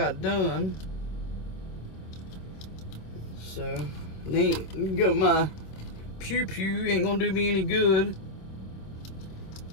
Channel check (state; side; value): late; right; 26 ms